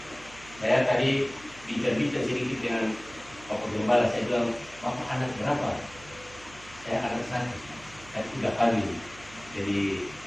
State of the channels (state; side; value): noise; right; hum, 20 dB below the sound